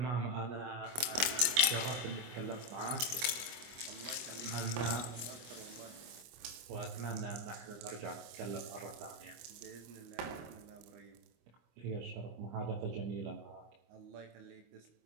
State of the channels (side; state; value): left; late; 25 ms